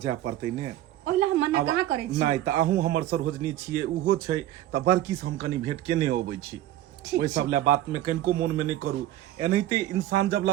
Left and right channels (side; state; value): left; quieter; 13.8 dB